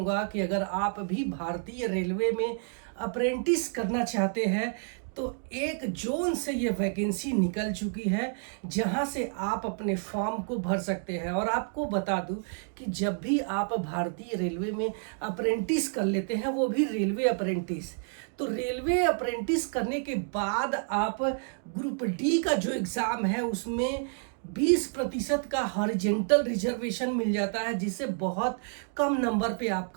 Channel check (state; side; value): silent; left; 58 dB below the other